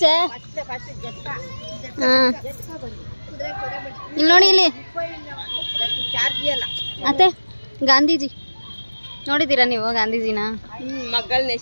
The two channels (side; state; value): both; inverted; correlation -1.00